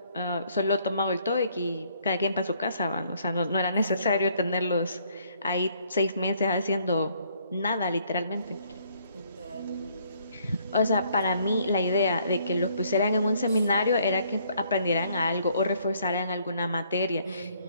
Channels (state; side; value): inverted; both; correlation -0.66